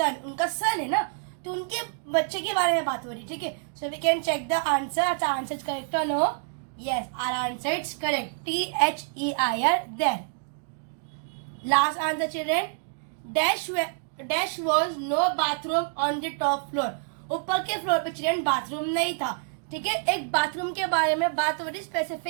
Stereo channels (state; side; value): silent; left; 60 dB below the other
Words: उनका son है ना, तो उनके बच्चे के बारे में बात हो रही. ठीक है, so we can check the answer. अच्छा, answer is correct or no? Yes, our answer is correct. THEIR, there. Last answer children. Dash was no bathroom on the top floor. ऊपर के फ्लोर पे चिल्ड्रन बाथरूम नहीं था. ठीक है, एक बाथरूम के बारे में बात हो रही.